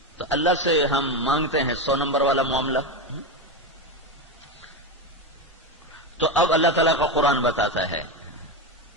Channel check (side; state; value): both; normal; correlation 0.15